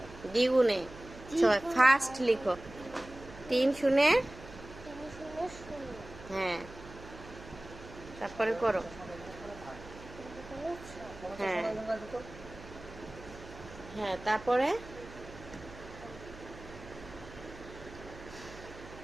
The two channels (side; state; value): right; noise; hum, 17 dB below the sound